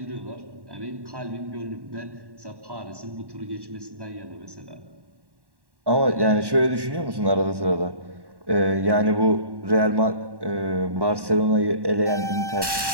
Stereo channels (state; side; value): late; left; 1.1 ms